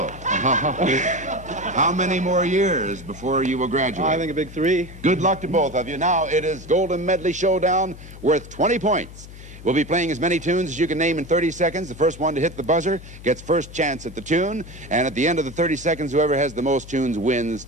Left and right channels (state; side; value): noise; left; hum, 16 dB below the sound